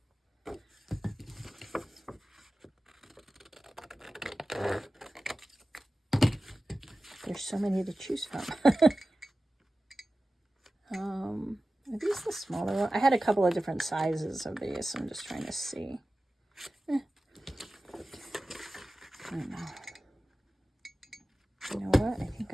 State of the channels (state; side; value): normal; both; correlation 0.95